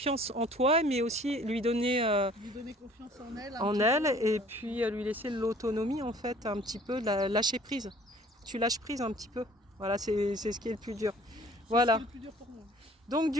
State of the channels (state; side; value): normal; both; correlation 0.53